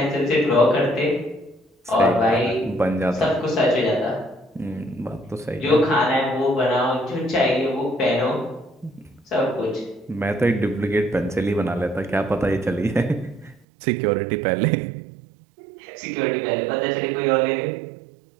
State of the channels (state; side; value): drops out; left; at 13.7 s